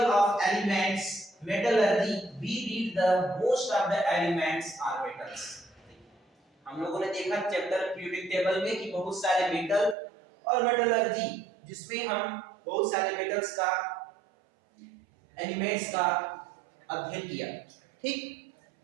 of elements metallurgy we read the most of the elements are metals। हम लोगों ने देखा चैप्टर पीरियोडिक टेबल में कि बहुत सारे मेटल और मेटलर्जी जिसमें हम बहुत सारे मेटल्स का एलिमेंट्स का अध्ययन किया। ठीक,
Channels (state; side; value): drops out; left; at 10.0 s